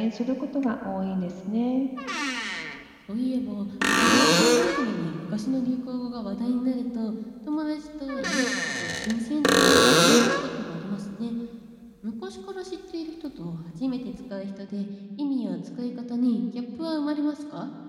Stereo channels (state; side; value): identical; both; correlation 1.00